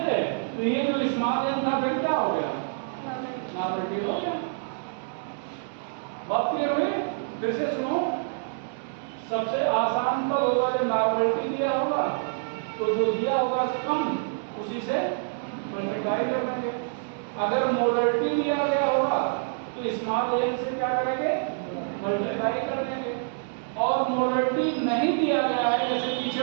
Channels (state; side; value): silent; left; digital silence